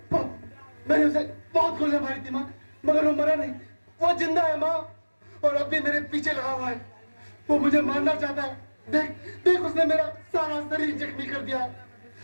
मैंने उसे बहुत गोलियां मारी थी माँ, मगर वो मरा नहीं, वो जिंदा है माँ और अब भी मेरे पीछे लगा हुआ है। वो मुझे मारना चाहता है। देख उसने मेरा सारा शरीर जख्मी कर दिया है।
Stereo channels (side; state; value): both; inverted; correlation -1.00